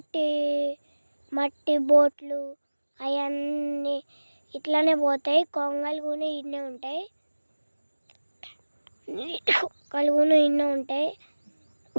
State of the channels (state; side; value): inverted; both; correlation -1.00